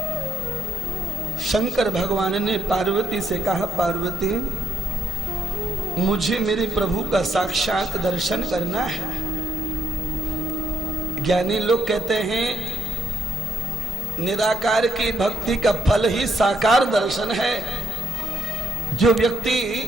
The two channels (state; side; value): normal; both; correlation 0.72